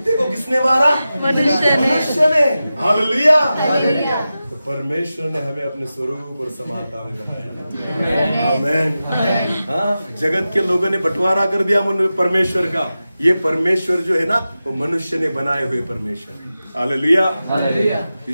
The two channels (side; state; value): both; inverted; correlation -0.93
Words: को किसने मारा? मनुष्य ने। हालेलुया। तो परमेश्वर ने हमें अपने स्वरूप और समानता में बनाया। आमीन। हाँ, जगत के लोगों ने बंटवारा कर दिया परमेश्वर का। ये परमेश्वर जो है ना, वो मनुष्य ने बनाए हुए परमेश्वर है। हालेलुया।